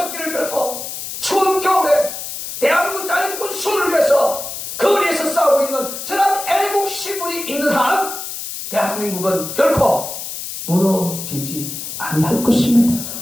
들고 추운 겨울에 대한민국 자유주권 수호를 위해서 거리에서 싸우고 있는 저런 애국 시분이 있는 한 대한민국은 결코 무너지지 아니할 것입니다.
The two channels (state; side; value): noise; left; hiss, 7 dB below the sound